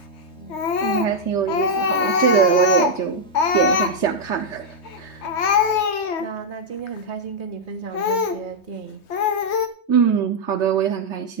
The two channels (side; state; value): right; late; 3.2 ms